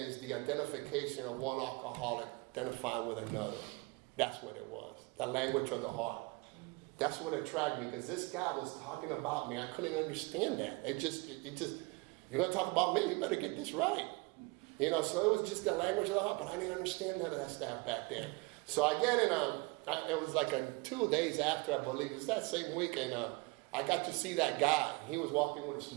the identification of one alcoholic identifying with another. That's what it was, the language of the heart. That's what attracted me, because this guy was talking about me. I couldn't understand that. It just, you're going to talk about me, you better get this right. So it was just the language of the heart, but I didn't understand none of that stuff back then. So I get in it was like 2 days after, I believe, it was that same week, and I got to see that guy. He was walking with a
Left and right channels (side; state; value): left; quieter; 26.9 dB